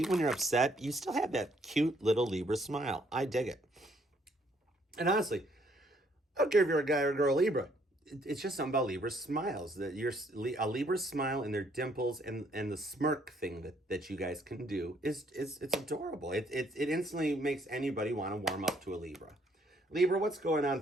when you're upset, you still have that cute little Libra smile. I dig it. And honestly, I don't care if you're a guy or a girl Libra. It's just something about Libra smiles. That a Libra smile and their dimples and the smirk thing that you guys can do it's adorable. It instantly makes anybody want to warm up to a Libra. Libra, what's going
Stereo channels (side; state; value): both; normal; correlation 0.67